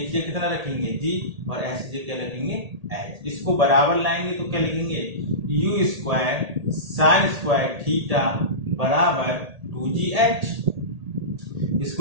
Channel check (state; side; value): late; left; 1.8 ms